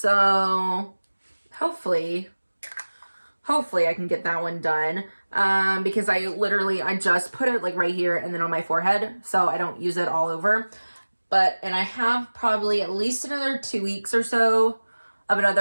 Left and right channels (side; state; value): both; inverted; correlation -1.00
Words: hopefully I can get that one done. Because I just put it like right here and then on my forehead, so I don't use it all over. And I have probably at least another 2 weeks or so of